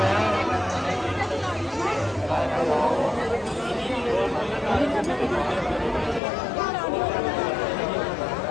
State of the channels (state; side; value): drops out; right; at 6.2 s